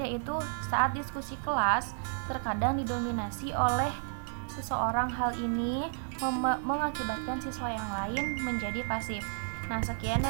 yaitu saat diskusi kelas terkadang didominasi oleh seseorang. Hal ini mengakibatkan siswa yang lain menjadi pasif. Nah, sekian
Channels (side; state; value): left; silent; digital silence